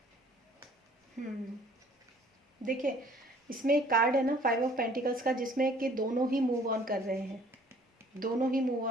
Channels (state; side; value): normal; both; correlation 0.56